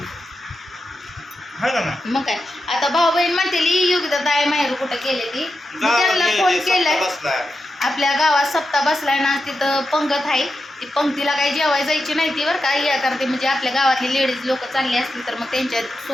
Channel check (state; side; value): normal; both; correlation 0.89